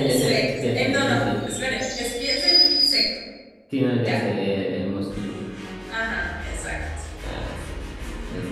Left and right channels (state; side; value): identical; both; correlation 1.00